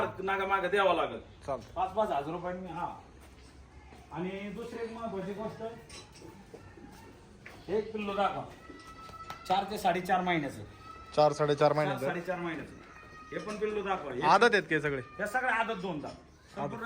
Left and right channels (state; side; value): identical; both; correlation 1.00